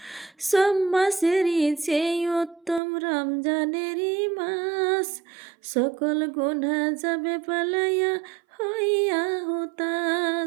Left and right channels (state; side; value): drops out; left; at 2.8 s